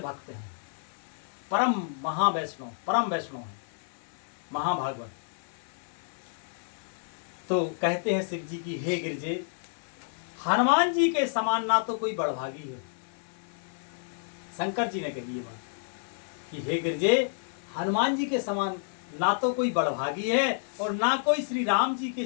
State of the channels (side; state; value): right; silent; 58 dB below the other